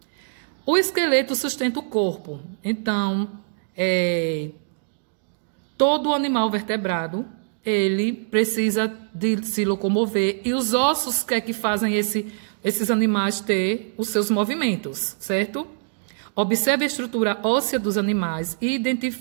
O esqueleto sustenta o corpo. Então, todo animal vertebrado, ele precisa de se locomover. E os ossos que fazem esses animais ter os seus movimentos, certo? Observe a estrutura óssea dos animais e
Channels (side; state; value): left; silent; digital silence